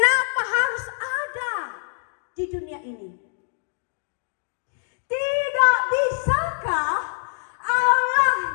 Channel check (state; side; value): silent; right; digital silence